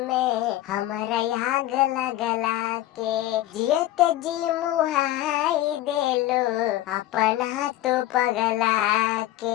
में हमारा आग लगला के जियत जी मुहाई देलो अपना तो पगला के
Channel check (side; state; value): right; quieter; 14.6 dB